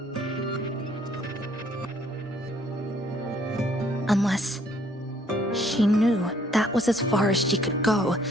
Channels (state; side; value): normal; both; correlation 0.63